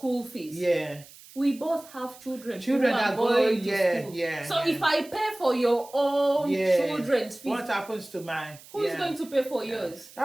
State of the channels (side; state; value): right; noise; hiss, 21 dB below the sound